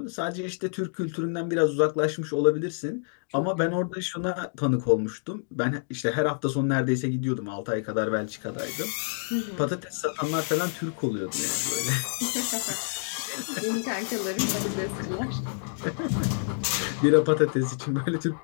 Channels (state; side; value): silent; right; digital silence